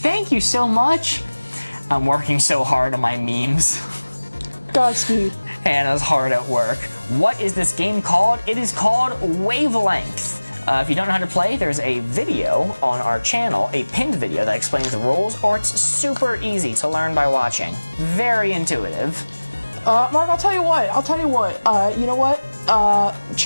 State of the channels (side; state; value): both; inverted; correlation -1.00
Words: you so much. I'm working so hard on my memes. Godspeed. Hannah's hard at work. What is this game called? It is called Wavelength. If you don't know how to play, there's a video on our channel, a pinned video that explains the rules, or it's super easy to learn by watching. Very intuitive. Mark, I'll tell you what. You know what?